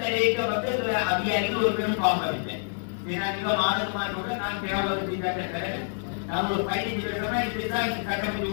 தரைக்க வந்து அதிகாரிகள் ஒரு பெரும் பாம்பவில்லை. மாதமானோட நான் தேவையான நான் ஒரு 15 வருஷமா இப்படிதான் கட்டமைச்சு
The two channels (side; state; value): right; silent; digital silence